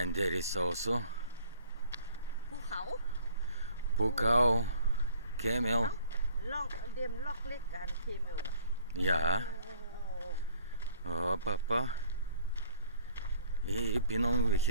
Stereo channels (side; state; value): both; inverted; correlation -0.55